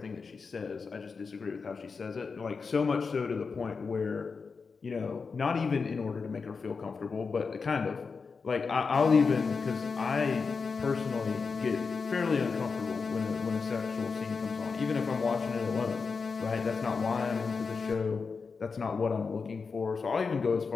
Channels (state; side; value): quieter; right; 5.0 dB